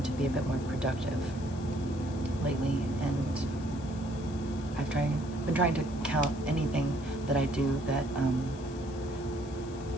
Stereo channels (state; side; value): noise; left; hiss, 21 dB below the sound